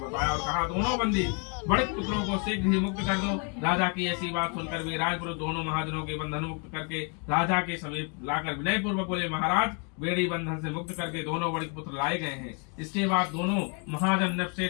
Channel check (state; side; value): quieter; right; 35.4 dB